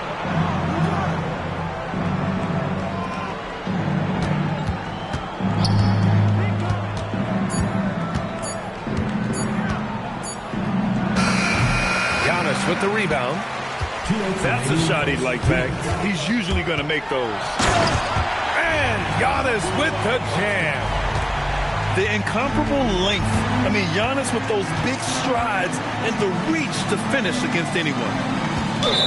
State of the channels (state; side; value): identical; both; correlation 1.00